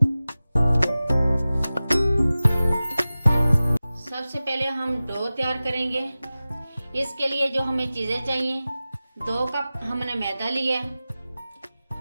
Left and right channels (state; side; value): inverted; both; correlation -0.96